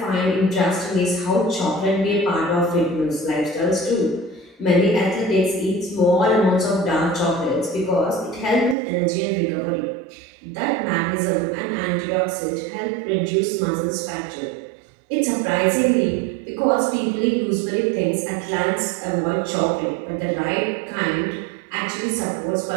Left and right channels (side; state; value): left; drops out; at 8.8 s